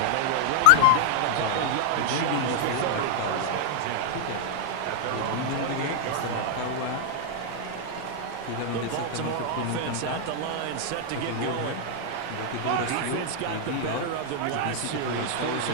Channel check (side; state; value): both; different; correlation 0.00